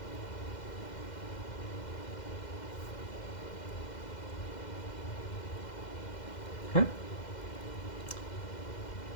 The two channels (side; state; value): right; late; 2.1 ms